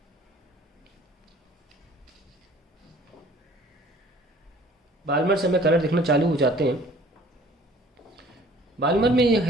बाल्मर से हमें कलर देखना चालू हो जाते हैं। बाल्मर में यह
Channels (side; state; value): both; normal; correlation 0.52